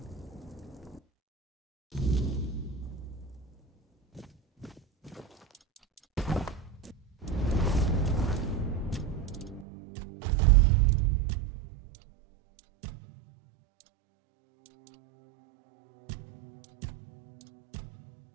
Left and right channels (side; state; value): left; drops out; at 9.7 s